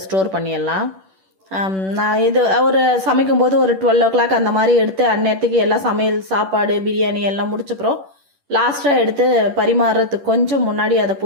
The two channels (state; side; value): late; left; 10 ms